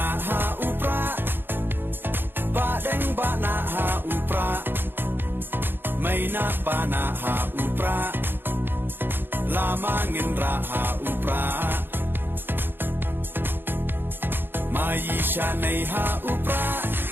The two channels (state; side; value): late; left; 0.10 ms